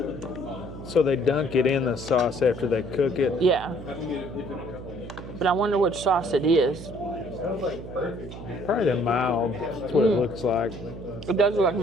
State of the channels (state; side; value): noise; right; hum, 11 dB below the sound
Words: So they dunk it in the sauce after they cook it? Yeah. But I wonder which sauce it is. Probably the mild. That's what it looks like. It does look like